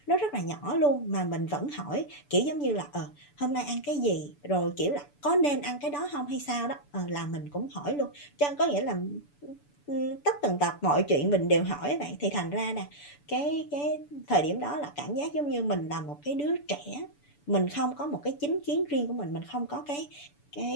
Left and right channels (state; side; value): late; right; 6.9 ms